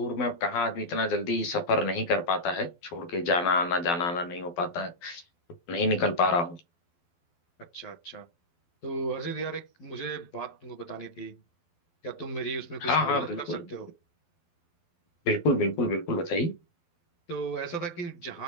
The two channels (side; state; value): right; late; 12 ms